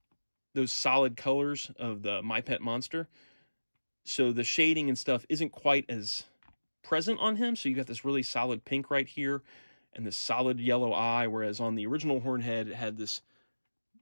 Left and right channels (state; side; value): inverted; both; correlation -1.00